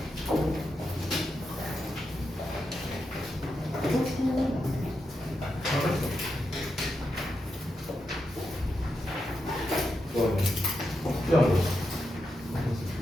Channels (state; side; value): normal; both; correlation 0.86